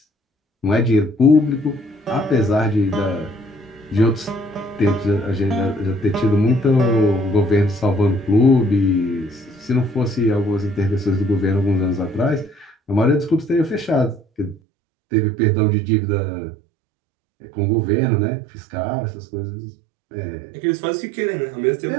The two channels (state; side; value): drops out; left; at 14.6 s